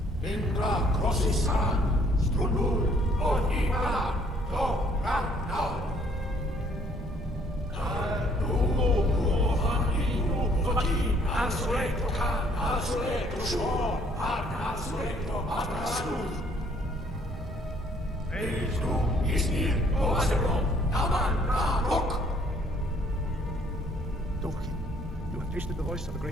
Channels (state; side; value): normal; both; correlation 0.62